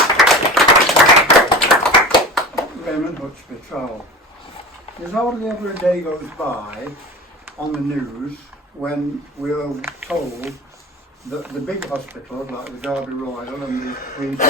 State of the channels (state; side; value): normal; both; correlation 0.34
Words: Raymond Hutchby, Trowell. There's hardly ever a day goes by on the news when we're told that the big hospitals like the Derby Royal and the Queen's